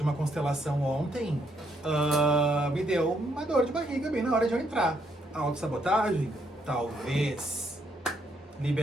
uma constelação ontem, me deu uma dor de barriga bem na hora de eu entrar. Autossabotagem? Talvez.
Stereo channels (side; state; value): both; normal; correlation 0.73